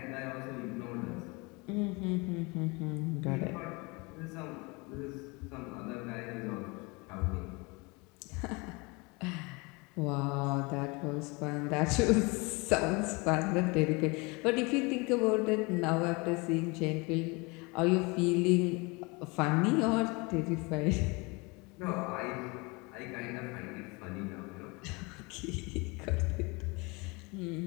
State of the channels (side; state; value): right; quieter; 27.3 dB